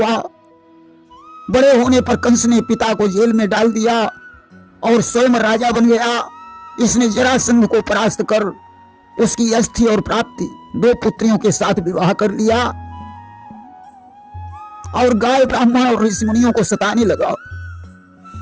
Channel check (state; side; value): identical; both; correlation 1.00